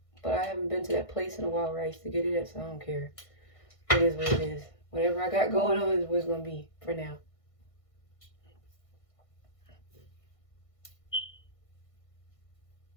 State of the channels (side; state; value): right; late; 1.5 ms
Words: but I haven't been to that place in a while where I used to get it at, so I don't care. It is what it is. Whatever I got going on is what it's gonna be for now.